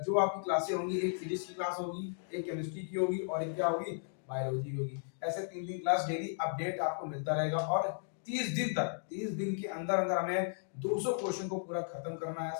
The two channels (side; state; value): right; silent; digital silence